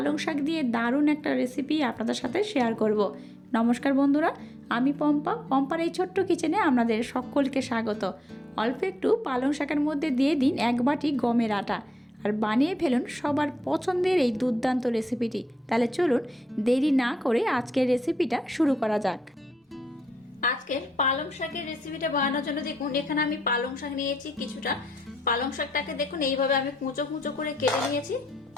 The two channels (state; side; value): normal; both; correlation 0.83